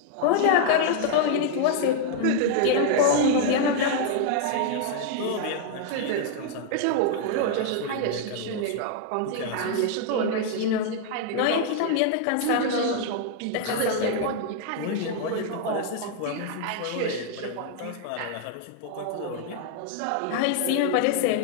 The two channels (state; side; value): different; both; correlation 0.00